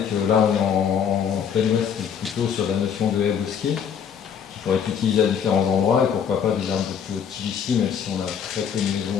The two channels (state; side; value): quieter; right; 7.7 dB